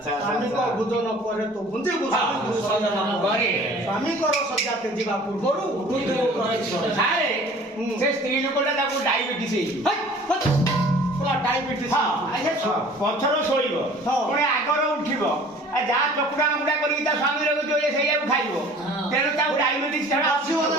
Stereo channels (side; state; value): both; normal; correlation 0.48